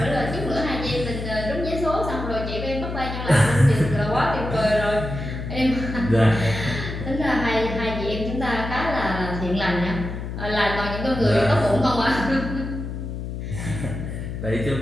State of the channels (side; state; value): left; noise; hum, 6 dB below the sound